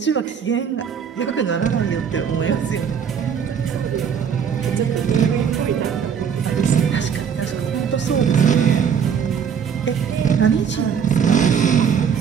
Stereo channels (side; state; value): left; quieter; 7.4 dB